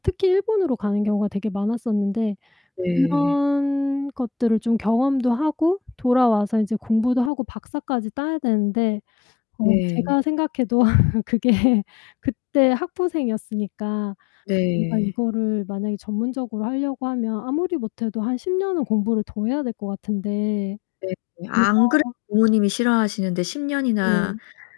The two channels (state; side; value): drops out; right; at 7.3 s